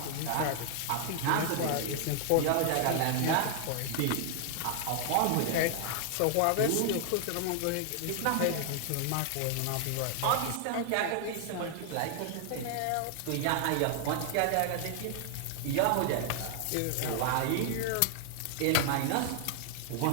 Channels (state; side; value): different; both; correlation 0.00